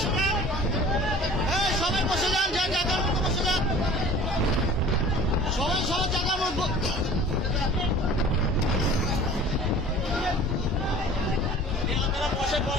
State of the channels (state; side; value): normal; both; correlation 0.45